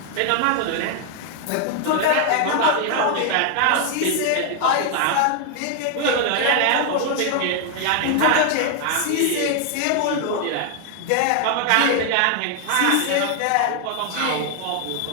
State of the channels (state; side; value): different; both; correlation 0.00